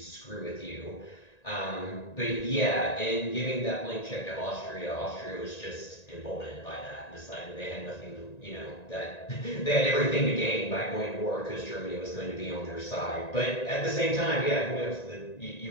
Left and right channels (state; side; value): late; right; 1.9 ms